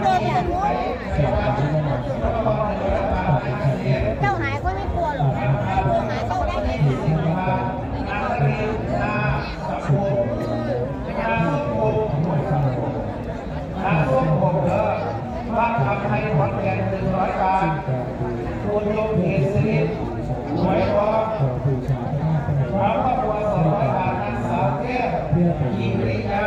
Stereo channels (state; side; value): identical; both; correlation 1.00